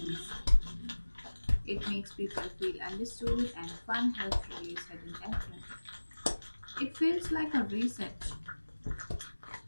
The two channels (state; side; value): inverted; both; correlation -1.00